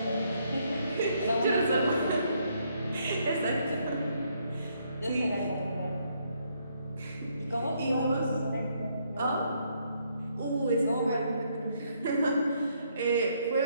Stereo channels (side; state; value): both; inverted; correlation -0.72